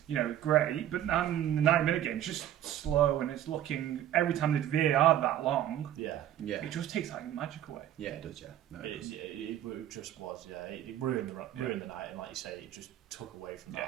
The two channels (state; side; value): quieter; left; 12.0 dB